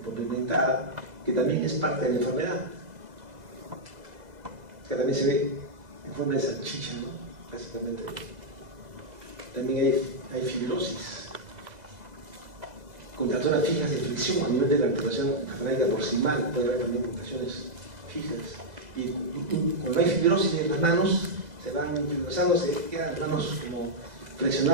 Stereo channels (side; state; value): left; late; 2.0 ms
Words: que también es parte de la enfermedad, que también se ve en forma de salchicha, ¿no? Básicamente. También hay fibrosis, contracturas fijas de flexión a nivel de la articulación falágica proximal, puede haber también mutaciones fijas. Y cuando hay fibrosis en las manos, se van fibrosando, se quedan las manos como